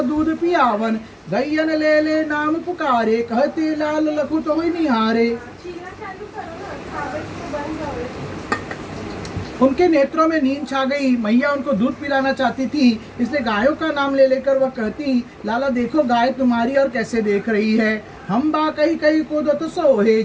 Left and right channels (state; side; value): identical; both; correlation 1.00